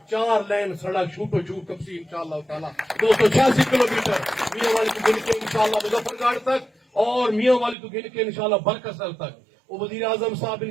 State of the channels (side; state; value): left; drops out; at 7.8 s